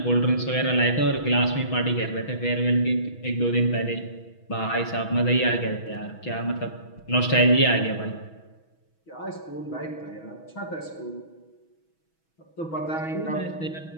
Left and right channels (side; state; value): right; late; 6.2 ms